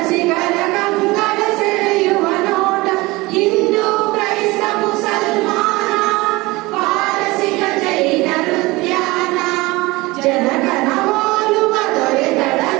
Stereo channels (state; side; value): quieter; left; 21.8 dB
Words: ಕಂಗಳ ಸೆಳೆಯುವ ನೋಟ. ಹಿಂದೂ ಕ್ರೈಸ್ತ ಮುಸಲ್ಮಾನ, ಪಾರಸಿಕ ಜೈನರ ಉದ್ಯಾನ, ಜನಗಣ ಹೋಲುವ ದೊರೆಗಳ